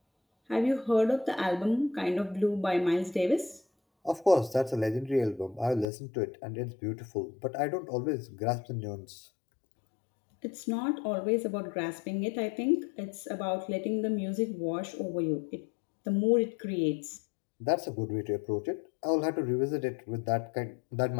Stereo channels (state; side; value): drops out; right; at 5.9 s